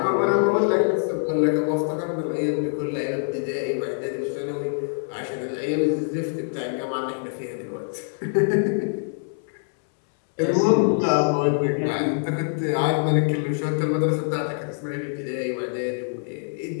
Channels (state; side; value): silent; right; 62 dB below the other